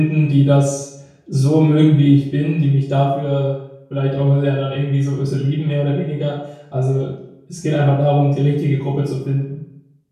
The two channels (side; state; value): both; identical; correlation 1.00